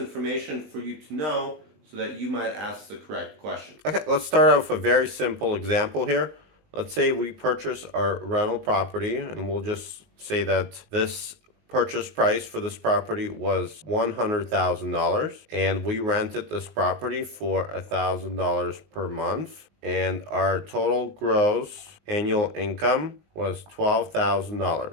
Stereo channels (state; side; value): late; left; 19 ms